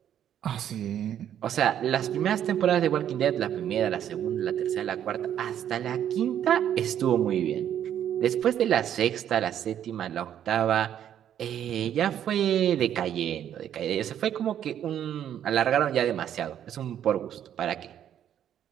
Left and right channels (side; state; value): left; quieter; 10.1 dB